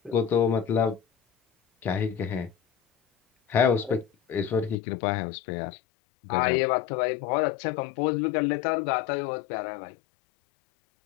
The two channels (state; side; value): drops out; right; at 4.8 s